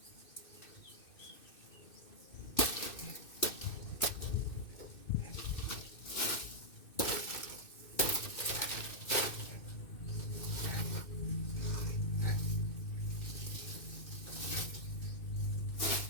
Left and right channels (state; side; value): late; right; 2.6 ms